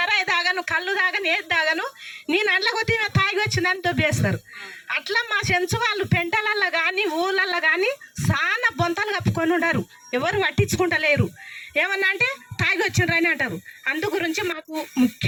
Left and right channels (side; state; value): both; identical; correlation 1.00